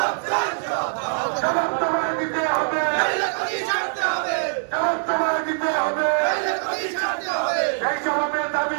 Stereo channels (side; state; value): left; silent; digital silence